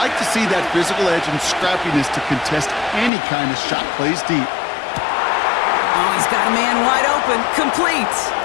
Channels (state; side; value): drops out; right; at 3.1 s